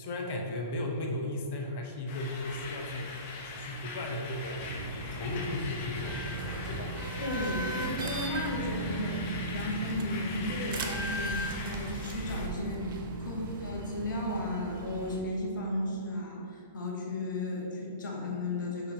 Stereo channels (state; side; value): inverted; both; correlation -0.32